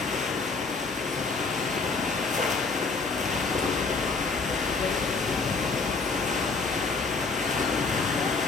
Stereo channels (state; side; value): quieter; right; 4.2 dB